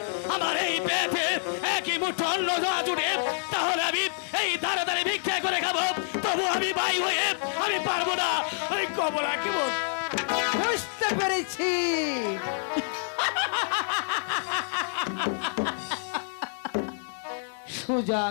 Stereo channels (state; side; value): silent; right; 56 dB below the other